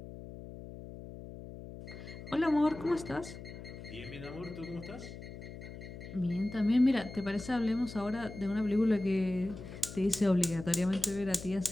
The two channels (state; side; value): noise; left; hum, 12 dB below the sound